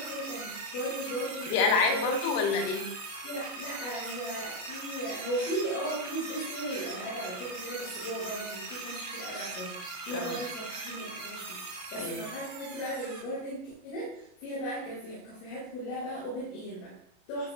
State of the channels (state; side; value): late; right; 33 ms